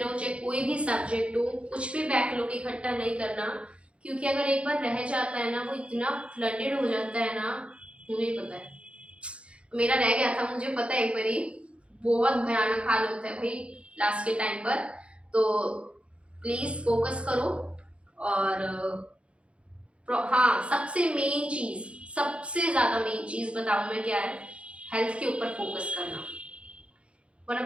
चाहे कोई भी सब्जेक्ट हो। कुछ भी बैकलॉग इकट्ठा नहीं करना, क्योंकि अगर एक बार रह जाता है ना, वो इतना फ्लडेड हो जाता है ना, मुझे पता है, मेरा रह गया था, मुझे पता है। एक बारी बहुत भयानक हाल होता है भाई लास्ट के टाइम पर। तो प्लीज फोकस करो। और हाँ, सबसे मेन चीज, सबसे ज्यादा मेन चीज बताऊं मैं क्या है, हेल्थ के ऊपर फोकस करना। One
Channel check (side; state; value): left; late; 0.060 ms